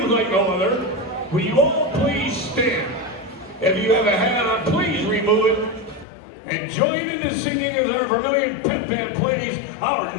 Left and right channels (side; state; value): right; drops out; at 6.1 s